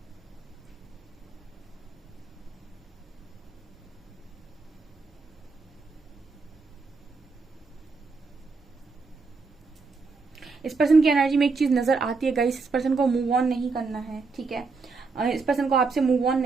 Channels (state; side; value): quieter; left; 4.3 dB